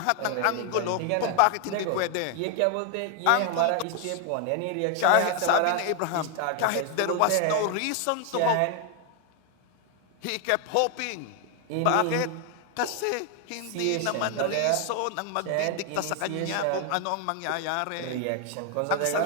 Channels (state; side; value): different; both; correlation 0.00